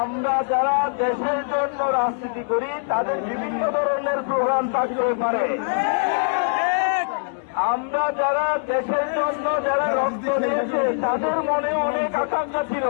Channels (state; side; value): silent; right; 64 dB below the other